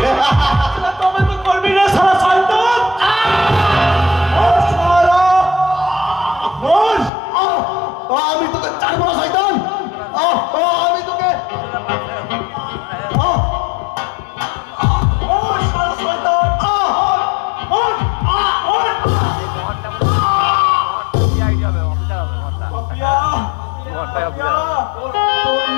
তবে তো করবি না সারা শয়তান। আমি তোকে চাইব না শয়তান, আমি তোকে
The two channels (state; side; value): drops out; right; at 7.1 s